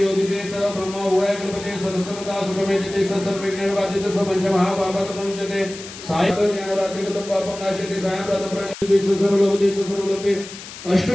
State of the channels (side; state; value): left; noise; hiss, 13 dB below the sound